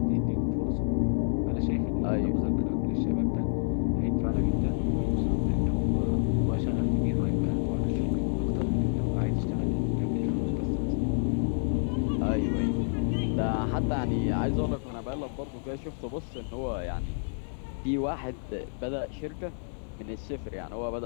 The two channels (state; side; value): silent; right; digital silence